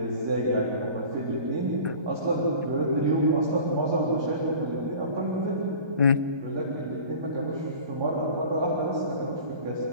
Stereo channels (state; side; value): late; left; 1.2 ms